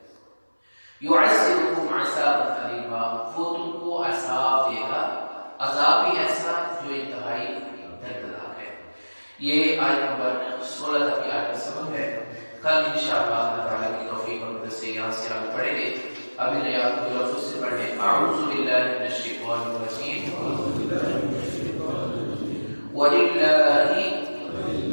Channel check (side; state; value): both; inverted; correlation -1.00